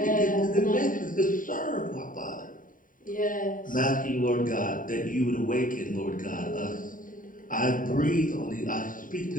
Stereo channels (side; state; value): right; late; 0.39 ms